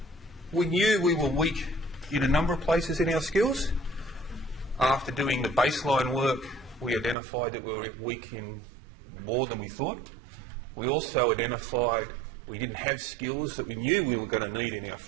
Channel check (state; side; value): drops out; left; at 7.2 s